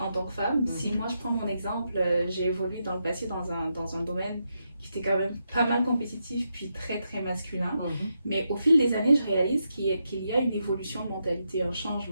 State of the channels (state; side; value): inverted; both; correlation -0.83